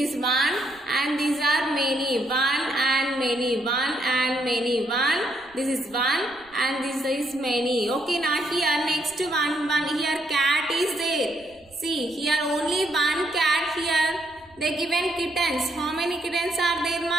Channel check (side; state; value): right; noise; rumble, 29 dB below the sound